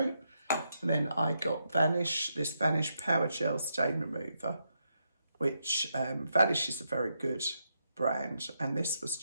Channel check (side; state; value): both; inverted; correlation -0.82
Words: And then I got this Vanish Power Gel Stain Remover, which Vanish is a very good brand. And this was